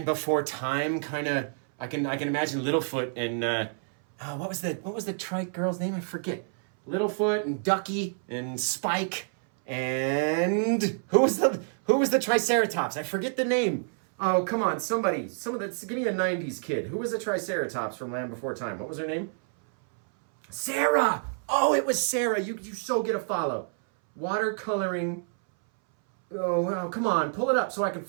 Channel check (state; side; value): silent; left; 59 dB below the other